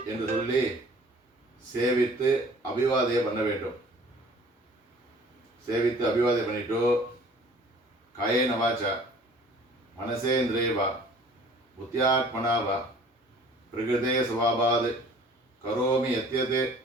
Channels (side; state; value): both; normal; correlation 0.51